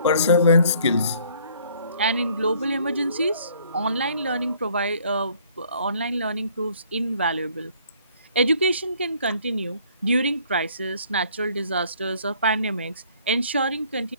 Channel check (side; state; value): both; inverted; correlation -0.60